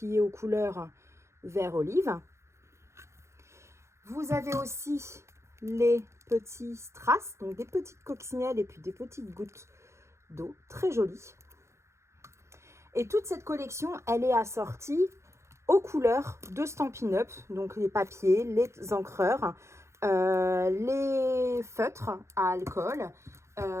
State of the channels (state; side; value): late; left; 0.13 ms